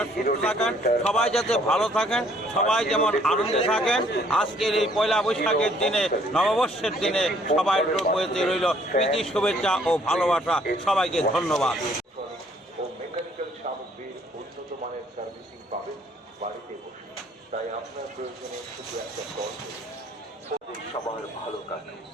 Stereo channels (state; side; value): normal; both; correlation 0.62